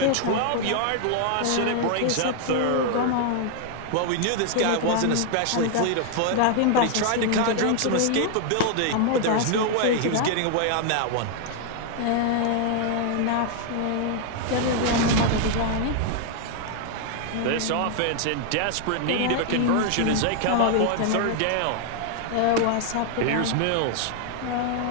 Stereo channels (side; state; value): both; different; correlation 0.00